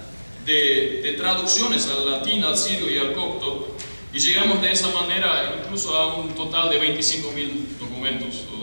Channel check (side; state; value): both; inverted; correlation -1.00